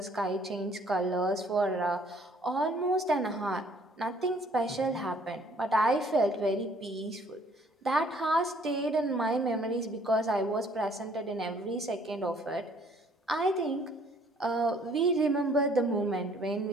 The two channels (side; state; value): both; normal; correlation 0.60